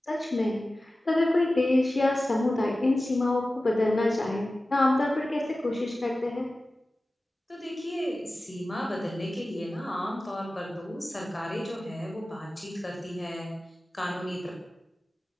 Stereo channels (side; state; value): both; normal; correlation 0.96